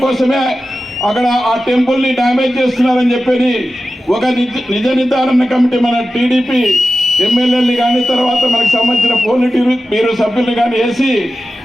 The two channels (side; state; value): both; normal; correlation 0.93